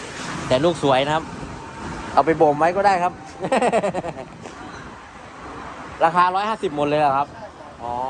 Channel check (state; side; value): identical; both; correlation 1.00